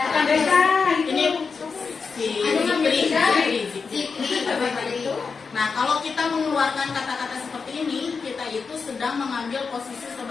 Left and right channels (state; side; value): quieter; right; 5.1 dB